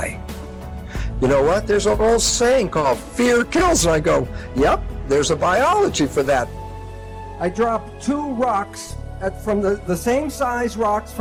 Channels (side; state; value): both; identical; correlation 1.00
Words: You know what? There's an old saying called fear kills. And I go, yep, there's a biology for that. I drop 2 rocks from the same size rocks